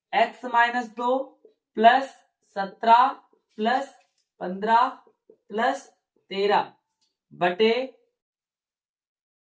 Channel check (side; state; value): both; identical; correlation 1.00